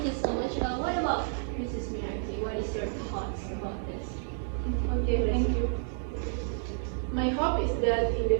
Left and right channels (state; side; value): silent; left; digital silence